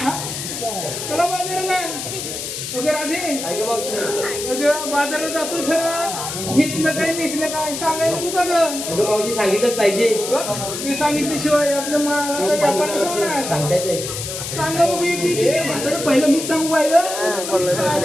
चला बाजाराला. अगं राधे, अगं बाजारात जातो खरं, घेतलं काय नेसलं काय सांगायला तू का गं? अगं मावशी सांगितलंच पाहिजे. ते सांगितल्याशिवाय आपलं व्यापार कसं होणार? सांगता येते. सांगा बघू पहिलं मीच सांगू पाहिलं.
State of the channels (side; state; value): left; noise; hiss, 6 dB below the sound